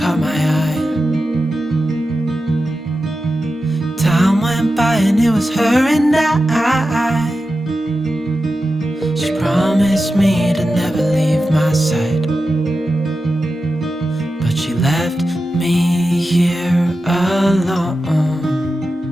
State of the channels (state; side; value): normal; both; correlation 0.91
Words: caught my eye. Time went by and it was her and I. She promised me to never leave my side, but she left me here alone.